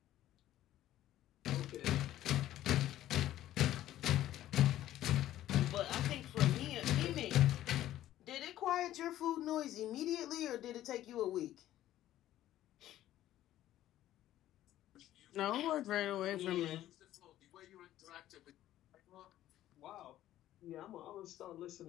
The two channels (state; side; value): quieter; right; 13.4 dB